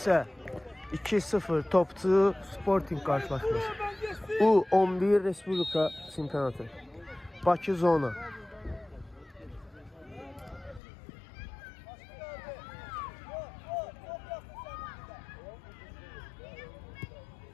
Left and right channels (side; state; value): right; drops out; at 10.8 s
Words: 2-0 topçu Sporting qarşılaşması. U11 Respublika çempionatı. Bakı zona.